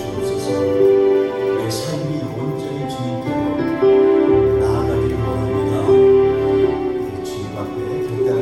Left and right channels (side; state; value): both; identical; correlation 1.00